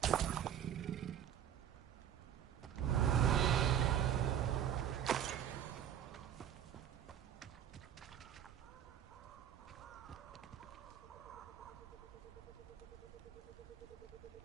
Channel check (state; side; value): quieter; left; 9.8 dB